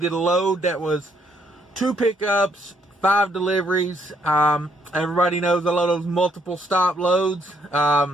a load that was 2 pickups, 5 deliveries. Everybody knows I love those multiple stop loads.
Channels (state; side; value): normal; both; correlation 0.71